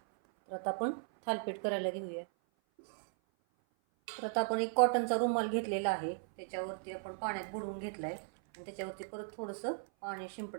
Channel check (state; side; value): silent; left; 53 dB below the other